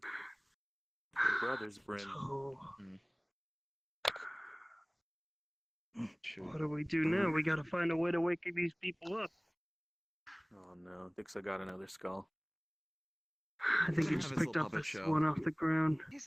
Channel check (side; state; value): both; identical; correlation 1.00